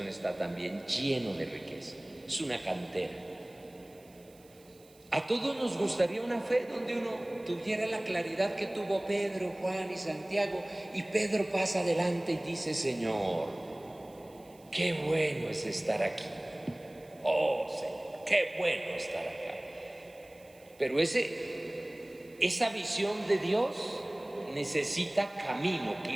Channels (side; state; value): right; noise; hiss, 27 dB below the sound